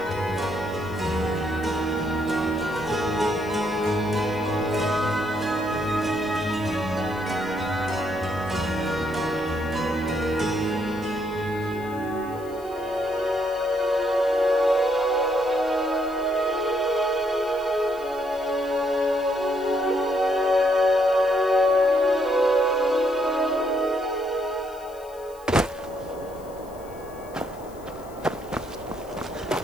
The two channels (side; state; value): left; noise; hiss, 25 dB below the sound